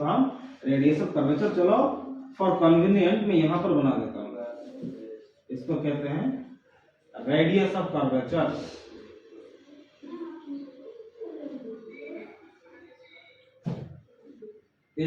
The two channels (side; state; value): both; identical; correlation 1.00